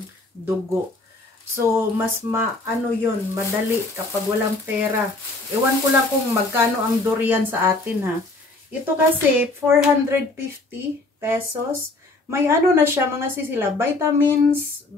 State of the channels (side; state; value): right; quieter; 3.1 dB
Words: dugo. So, mas yun, madali kapag walang pera. Ewan ko lang kung magkano ang durian sa atin, ha. Ito kasi, 450 pesos. May na siya, mga sisila, vitamin